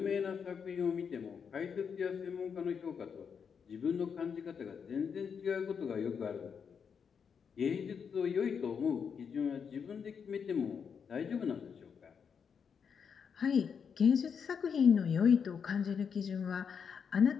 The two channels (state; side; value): quieter; right; 6.7 dB